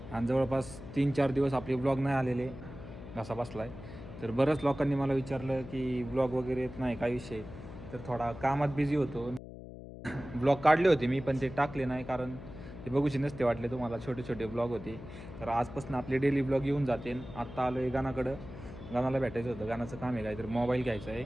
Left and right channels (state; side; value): noise; left; hum, 13 dB below the sound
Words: आणि जवळपास 3-4 दिवस आपले ब्लॉग नाही आलेले, घसा बसला आहे. तर बऱ्याच लोकांनी मला विचारलं की ब्लॉग वगैरे येत नाही, काय विषय. तर थोडा कामात बिझी होतो. ब्लॉग काढले होते मी पण ते टाकले नाही, कारण ते बघूचे नसते वाटले तुम्हाला, छोटे छोटे ब्लॉग होते. तर आजपासून आपले डेली ब्लॉग येऊन जाते. आत्ता आलो आहे गाणाकडं, गाणाला भेटायचं होतं, गाणाचं काम आहे काहीतरी, मोबाईल घ्यायचा आहे.